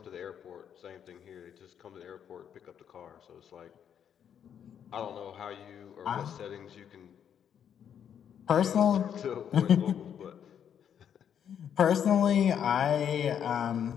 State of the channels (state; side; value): quieter; right; 8.7 dB